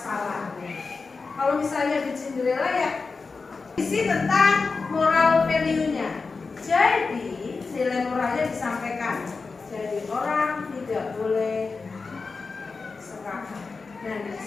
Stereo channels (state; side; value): quieter; right; 4.4 dB